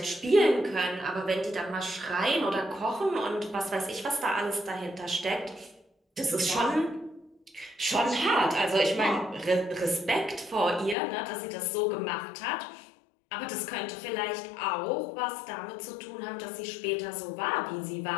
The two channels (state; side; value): drops out; right; at 11.0 s